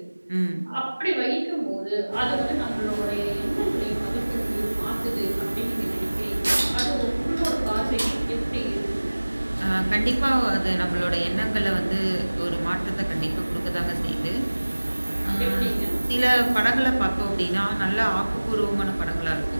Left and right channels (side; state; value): both; inverted; correlation -1.00